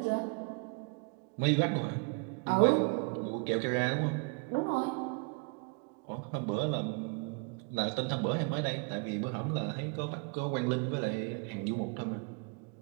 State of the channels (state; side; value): quieter; left; 34.8 dB